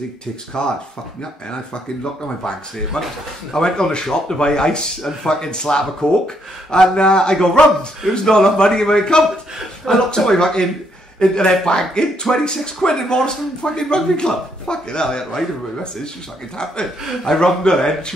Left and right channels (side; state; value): both; normal; correlation 0.73